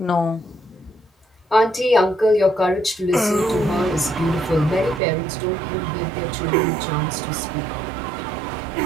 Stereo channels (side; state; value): left; drops out; at 5.0 s